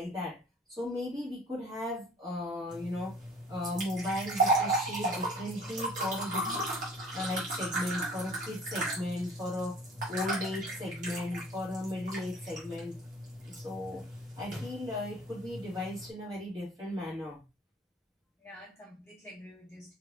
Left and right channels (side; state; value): both; normal; correlation 0.49